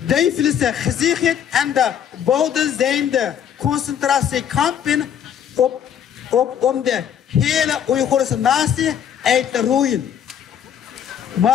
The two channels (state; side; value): quieter; right; 9.0 dB